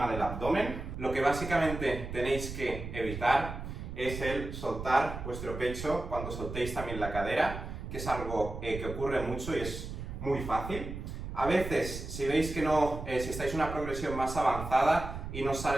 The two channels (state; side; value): noise; right; rumble, 8 dB below the sound